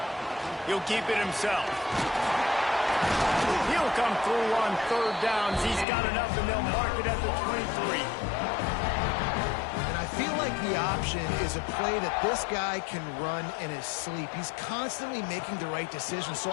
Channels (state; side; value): drops out; right; at 5.9 s